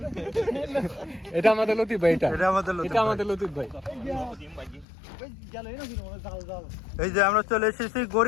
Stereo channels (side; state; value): right; drops out; at 4.9 s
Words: এটা আমাদের লতিফ ভাই, এটা আমাদের লতিফ ভাই। এই যে আমরা চলে এসেছি